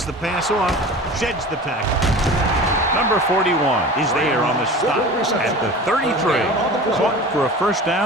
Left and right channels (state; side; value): normal; both; correlation 0.37